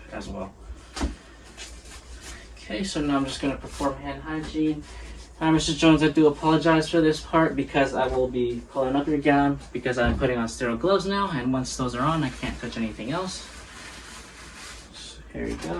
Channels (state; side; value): identical; both; correlation 1.00